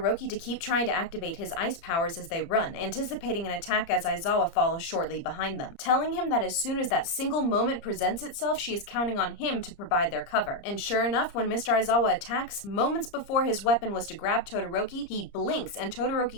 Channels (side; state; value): right; late; 30 ms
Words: to keep trying to activate his ice powers as they run, anticipating an attack as Aizawa follows shortly behind them, telling him that as soon as that single moment presents itself, she is counting on him to provide their cover. And sure enough, when Mr. Aizawa attacks, moments before his weapon was to grab Todoroki, he blinks and